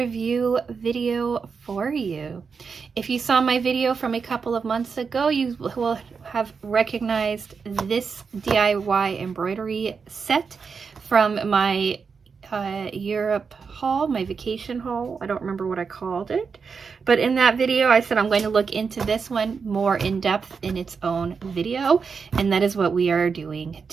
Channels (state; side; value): quieter; left; 5.5 dB